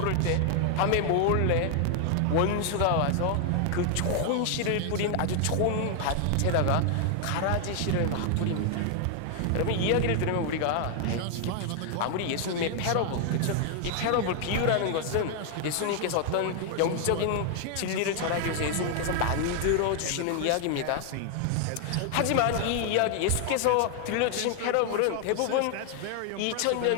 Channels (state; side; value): different; both; correlation 0.00